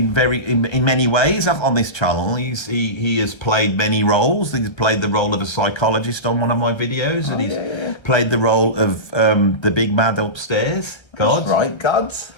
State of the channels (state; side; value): late; right; 1.3 ms